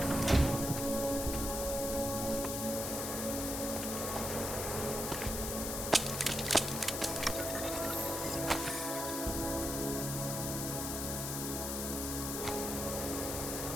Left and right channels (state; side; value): noise; left; hiss, 3 dB below the sound